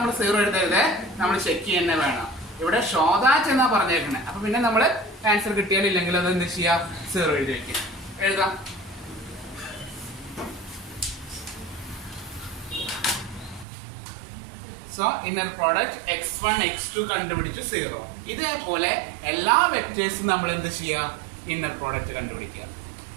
0 എഴുതരുത്, നമ്മൾ ചെക്ക് ചെയ്യുന്നേ വേണം. ഇവിടെ ഷോദാറ്റ് എന്നാ പറഞ്ഞേക്കണേ. അപ്പൊ പിന്നെ നമ്മള് ആൻസർ കിട്ടിയാലില്ലെങ്കിൽ അത് എന്ത് ചെയ്യാ? 0 എഴുതി വെക്കാം. എഴുതാം. So inner product x1 x2 കണ്ടുപിടിച്ചു 0. ഇതേപോലെ എല്ലാ വെക്ടേഴ്സും നമ്മൾ എന്ത് ചെയ്യുക? ഇന്നർ പ്രോഡക്റ്റ് കണ്ടുപിടിക്കുക.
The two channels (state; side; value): drops out; left; at 13.7 s